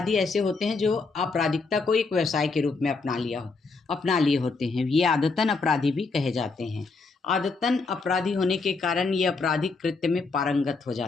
ऐसे होते हैं जो आपराधिकता को एक व्यवसाय के रूप में अपना लिए होते हैं। ये आदतन अपराधी भी कहे जाते हैं। आदतन अपराधी होने के कारण ये आपराधिक कृत्य में पारंगत हो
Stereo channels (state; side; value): quieter; right; 4.1 dB